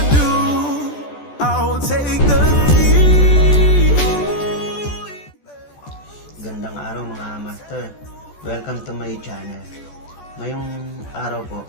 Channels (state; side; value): late; right; 14 ms